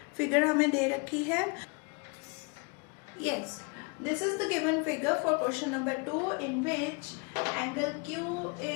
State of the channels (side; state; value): right; quieter; 32.8 dB